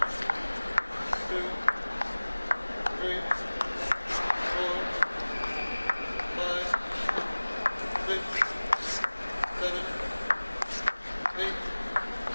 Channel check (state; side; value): inverted; both; correlation -1.00